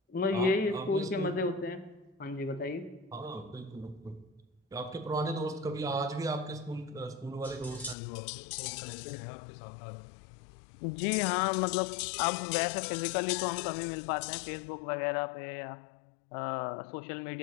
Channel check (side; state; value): right; drops out; at 8.0 s